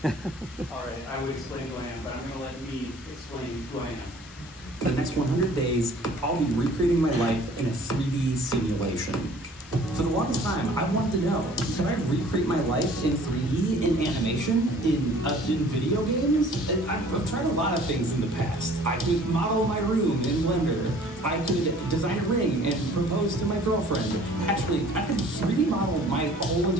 All right, I would explain who I am, but I'm going to let me explain who I am. For the next 100 days, I'll be recreating my life in a 3D simulation. For the longest time, I wanted to know, can I recreate my life in 3D, in animation, in video games? And I've tried a lot of things in the past. I could model my room in Blender. I could design a ring and propose to my girlfriend. Actually, I could 3D model my whole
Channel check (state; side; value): normal; both; correlation 0.52